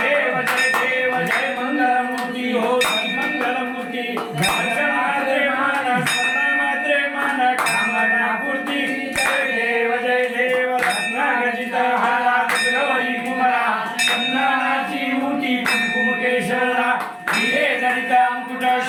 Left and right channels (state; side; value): identical; both; correlation 1.00